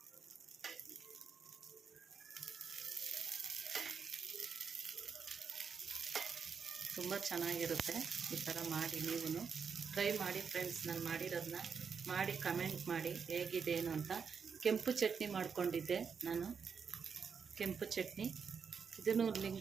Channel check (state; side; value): quieter; left; 6.2 dB